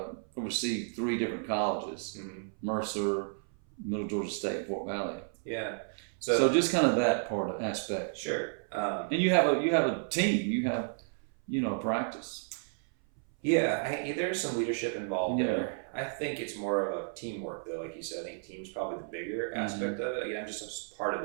oversee 3 different colleges, Mm-hmm. Mercer, Middle Georgia State, and Fort Valley. Yeah. So just kind of that aspect. Sure. And you have a team. You have, practice. Yeah, there's some leadership involved Yeah. there. I think it's more of a teamwork, though. Like you said, I think team's probably the bigger aspect of it. Again, I'm just a part of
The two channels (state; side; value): silent; left; 56 dB below the other